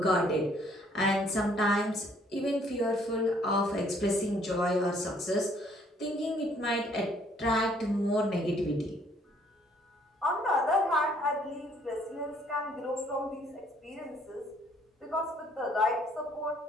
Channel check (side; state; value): both; normal; correlation 0.63